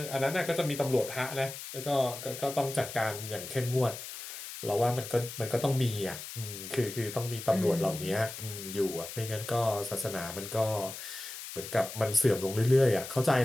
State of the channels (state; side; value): noise; left; hiss, 10 dB below the sound